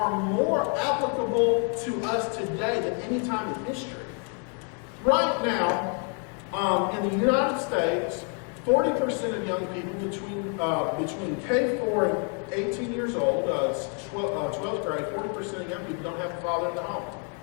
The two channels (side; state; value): right; quieter; 38.6 dB